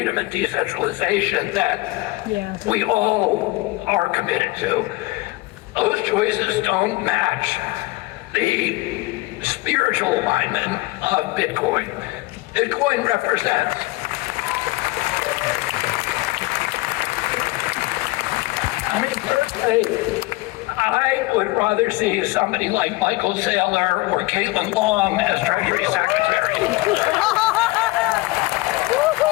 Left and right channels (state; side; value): quieter; right; 21.1 dB